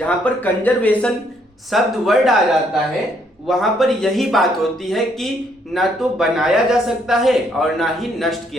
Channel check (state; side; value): normal; both; correlation 0.70